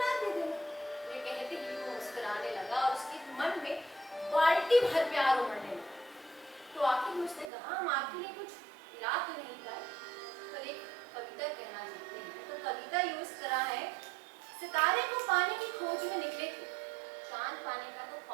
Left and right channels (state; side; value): drops out; left; at 7.5 s